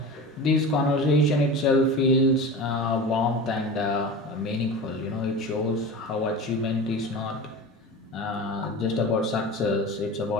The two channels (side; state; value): both; normal; correlation 0.31